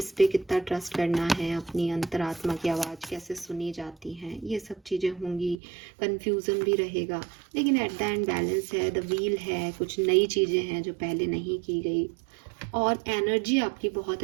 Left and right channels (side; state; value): left; drops out; at 5.6 s